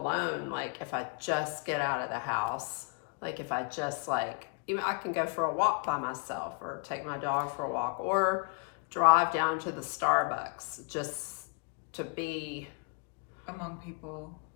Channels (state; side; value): quieter; right; 35.5 dB